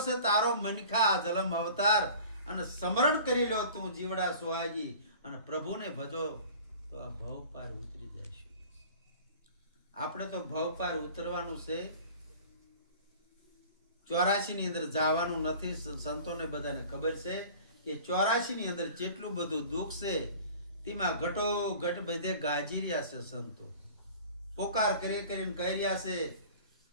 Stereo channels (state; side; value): inverted; both; correlation -0.44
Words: છે તારો મનખા જલમ અવતાર અને સ્મરણ કરી લો તું જીવડા સુહાગી અને પ્રભુને ભજો તો આ ભવ પાર ઉતરી જઈશું. આપણે તો ભવ પાર ઉતરવાનું છે. 84 ની અંદર જવાનું નથી. સંતોને બધાને ખબર છે કે 84 ની અંદર જેટલું બધું દુઃખ છે તેમાં ઘટો ઘટ બધે ગાજી રહ્યા છે. સંતો પોકાર કરી કરીને કહી રહ્યા છે